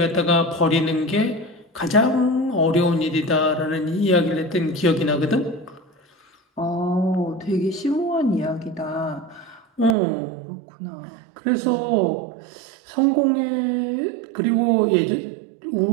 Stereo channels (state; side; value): drops out; left; at 10.0 s